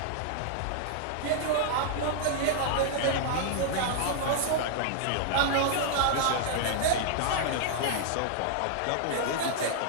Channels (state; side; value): different; both; correlation -0.01